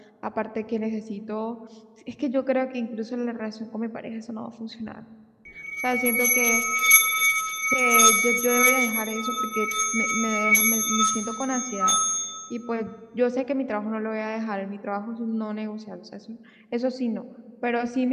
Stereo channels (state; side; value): identical; both; correlation 1.00